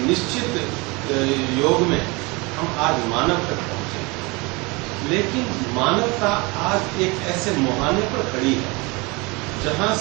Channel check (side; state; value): left; quieter; 26.3 dB